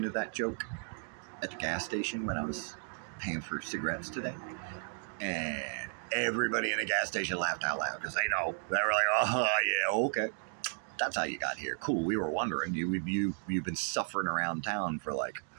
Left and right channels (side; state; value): left; silent; 55 dB below the other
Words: of that joke at the gas station when I was paying for cigarettes today, and everybody in the gas station laughed out loud because they know. They were like, "Oh yeah, okay, that's how you got here. Cool. We were wondering. You've been suffering around town for like